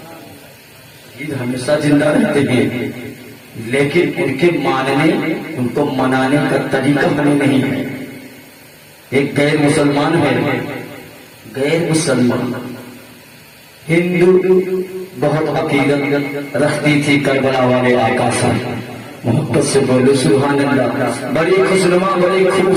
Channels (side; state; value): both; identical; correlation 1.00